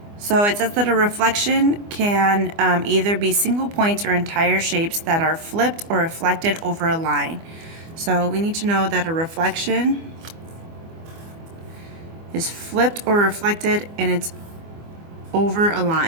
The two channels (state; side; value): late; left; 24 ms